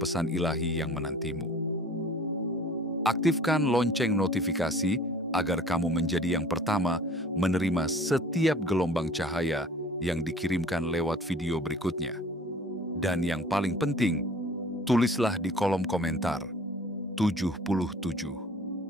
pesan ilahi yang menantimu. Aktifkan lonceng notifikasi agar kamu menjadi yang pertama menerima setiap gelombang cahaya yang dikirimkan lewat video berikutnya. Dan yang paling penting, tulislah di kolom komentar 77.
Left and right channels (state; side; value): normal; both; correlation 0.47